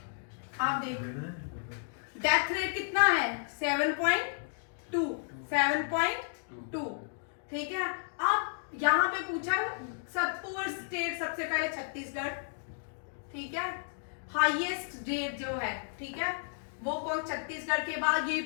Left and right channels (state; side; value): silent; right; digital silence